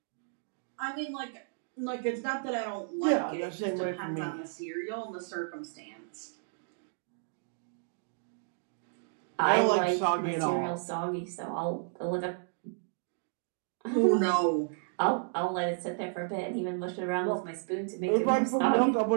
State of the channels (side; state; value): left; silent; digital silence